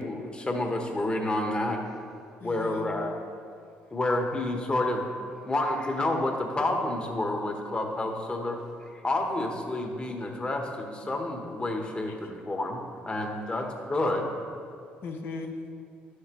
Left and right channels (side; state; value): both; normal; correlation 0.79